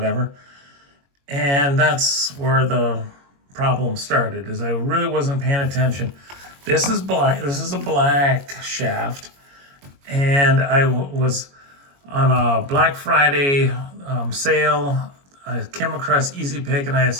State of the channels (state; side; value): late; left; 22 ms